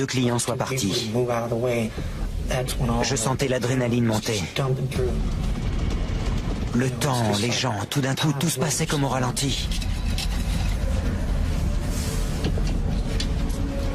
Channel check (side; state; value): both; identical; correlation 1.00